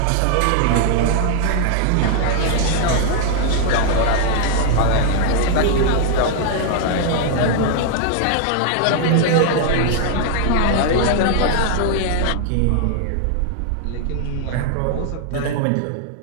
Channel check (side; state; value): both; different; correlation 0.00